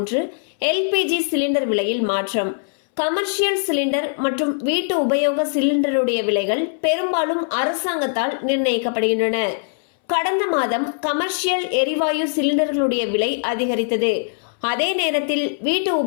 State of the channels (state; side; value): silent; right; 65 dB below the other